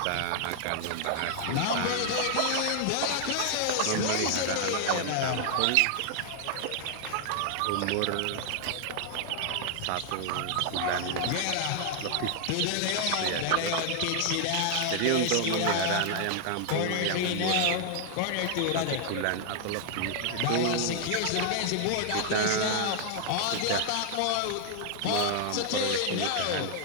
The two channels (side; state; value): both; different; correlation 0.00